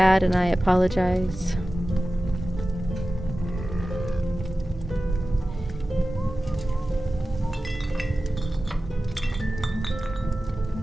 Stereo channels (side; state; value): both; normal; correlation 0.95